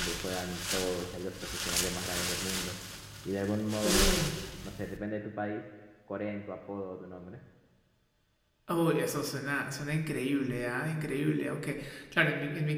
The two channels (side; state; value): both; identical; correlation 1.00